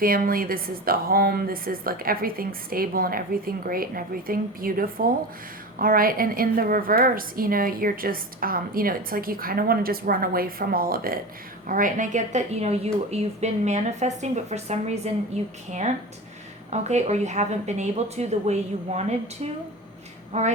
This is the home. This is like everything stable and everything great and everything beautiful. All right. And in the reverse, you're just, it's like you kind of want to just run away from all of it. All right. And I get that, you've been manifesting, but for some reason you can't. Okay. Or you haven't been able to the way you wanted to. All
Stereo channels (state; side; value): normal; both; correlation 0.30